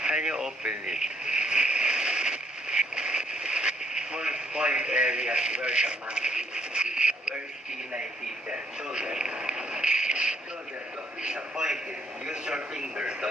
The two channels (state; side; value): normal; both; correlation 0.70